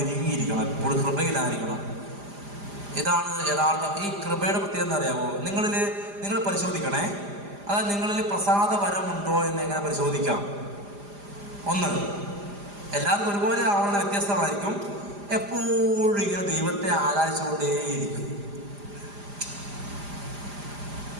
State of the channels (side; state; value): left; late; 5.0 ms